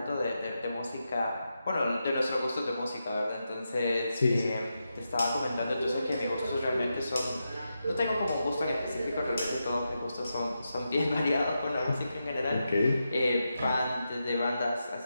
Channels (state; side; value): inverted; both; correlation -0.88